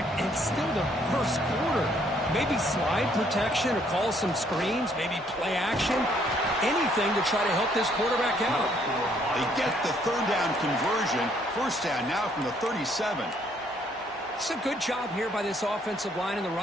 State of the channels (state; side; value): normal; both; correlation 0.66